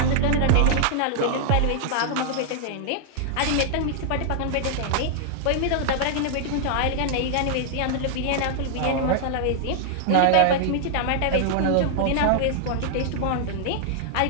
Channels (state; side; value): different; both; correlation -0.01